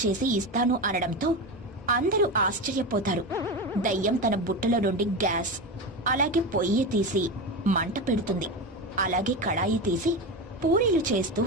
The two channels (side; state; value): both; normal; correlation 0.20